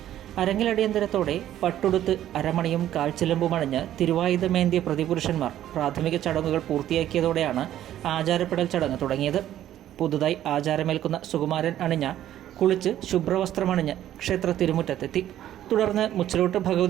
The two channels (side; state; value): left; quieter; 12.1 dB